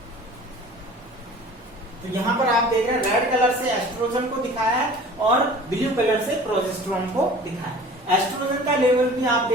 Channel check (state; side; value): normal; both; correlation 0.44